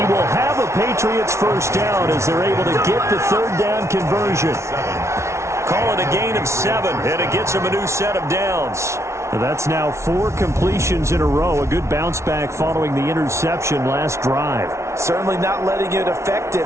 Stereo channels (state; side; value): late; left; 0.13 ms